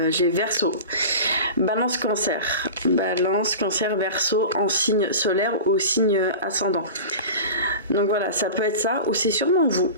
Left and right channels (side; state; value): both; inverted; correlation -0.33